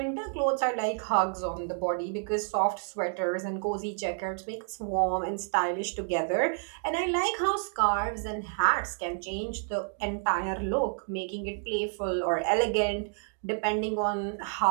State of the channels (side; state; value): left; silent; 58 dB below the other